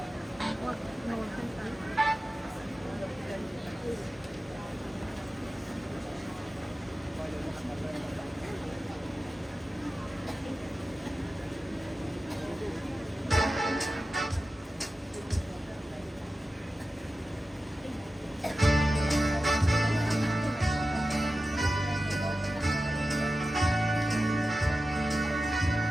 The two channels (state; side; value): normal; both; correlation 0.93